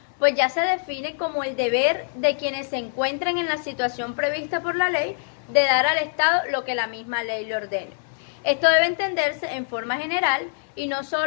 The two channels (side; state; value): right; silent; 62 dB below the other